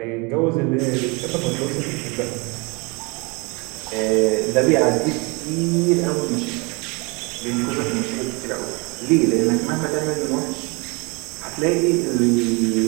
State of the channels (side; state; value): left; quieter; 28.6 dB